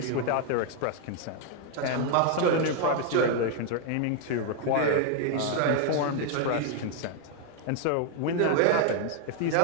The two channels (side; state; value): both; different; correlation 0.00